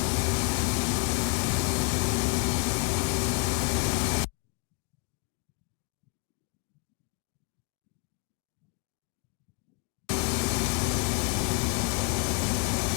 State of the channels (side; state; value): right; quieter; 31.7 dB